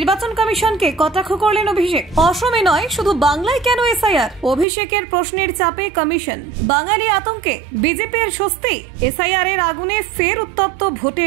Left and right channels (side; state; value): left; drops out; at 4.7 s